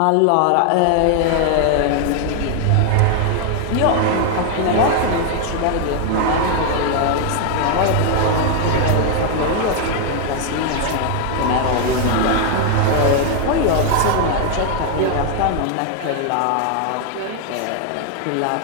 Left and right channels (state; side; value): different; both; correlation 0.00